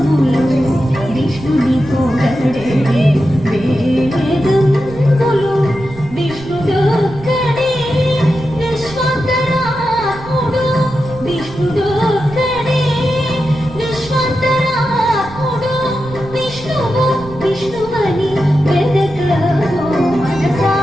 విష్ణుని పొగడే వేదం బలో విష్ణుడొక్కడే విశ్వంతరాత్ముడు విష్ణుడొక్కడే విశ్వంతరాత్ముడు విష్ణువు విష్ణువని వెదకవో మనసా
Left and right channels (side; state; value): right; noise; rumble, 16 dB below the sound